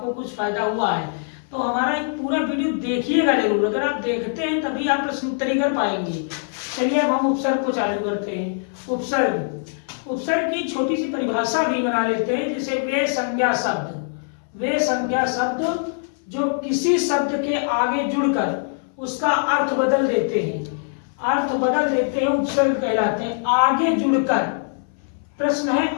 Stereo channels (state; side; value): silent; right; 61 dB below the other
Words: कुछ फायदा हुआ है। तो हमारा एक पूरा वीडियो देखिएगा जरूर, अगर आप देखते हैं तभी आप प्रश्न उत्तरी कर पाएंगे। चलिए अब हम उपसर्ग को चालू करते हैं। उपसर्ग की छोटी सी परिभाषा भी बना लेते हैं, जैसे वे संज्ञा शब्द जो किसी शब्द के आगे जुड़कर उसका अर्थ बदल देते हैं, उपसर्ग कहलाते हैं। आगे जुड़कर, प्रश्न है